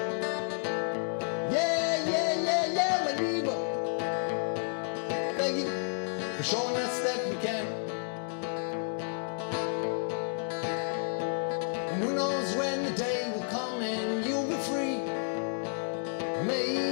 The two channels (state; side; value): silent; right; 57 dB below the other